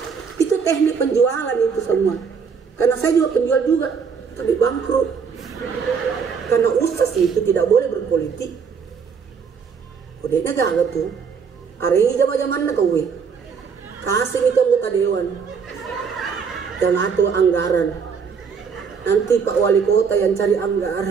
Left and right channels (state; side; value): quieter; left; 6.1 dB